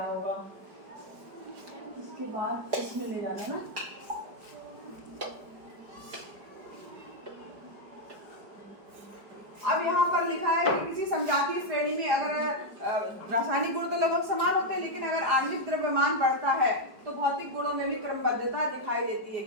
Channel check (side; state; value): left; late; 4.9 ms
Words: होगा। इसके बाद इसमें ले जाना ना, अब यहाँ पर लिखा है कि किसी समजातीय श्रेणी में अगर रासायनिक गुण तो लगभग समान होते हैं, लेकिन अगर आणविक द्रव्यमान बढ़ता है तो भौतिक गुणों में भी क्रमबद्धता दिखाई देती है,